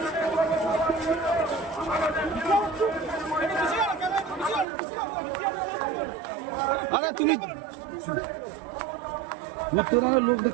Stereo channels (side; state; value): left; drops out; at 4.7 s